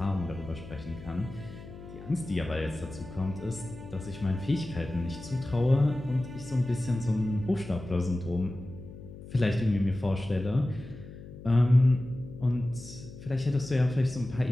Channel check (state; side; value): noise; left; hum, 15 dB below the sound